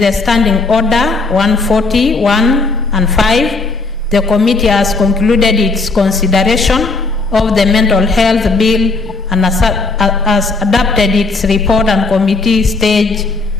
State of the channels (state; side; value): quieter; right; 3.8 dB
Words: Standing Order 141 and 5. The committee has concluded its consideration of the Mental Health Bill and has adopted its report and committee stage